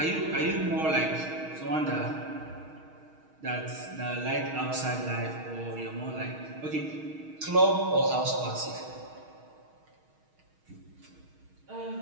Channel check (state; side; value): late; left; 6.4 ms